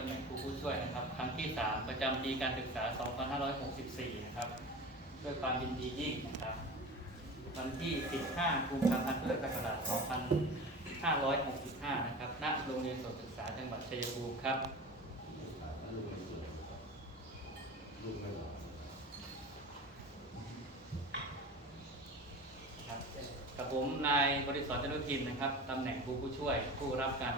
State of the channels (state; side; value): normal; both; correlation 0.34